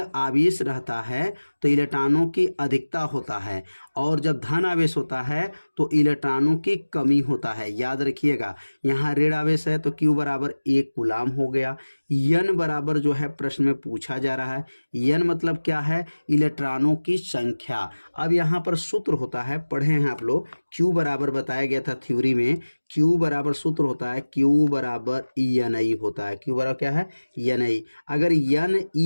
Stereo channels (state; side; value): inverted; both; correlation -1.00